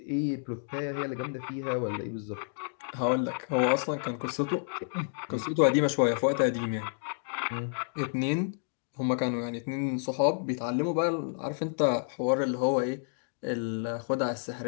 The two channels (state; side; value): silent; right; digital silence